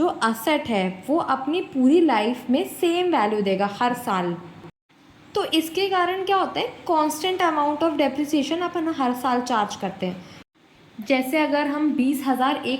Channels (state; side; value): identical; both; correlation 1.00